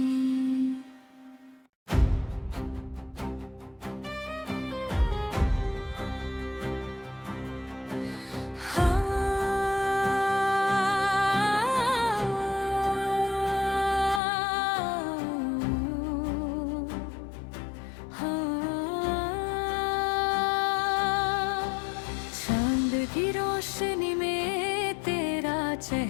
चांद की रोशनी में तेरा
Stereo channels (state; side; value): drops out; right; at 14.2 s